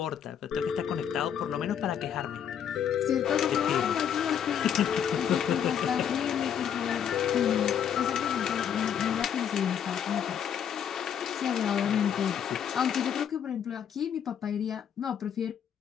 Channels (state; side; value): quieter; right; 8.6 dB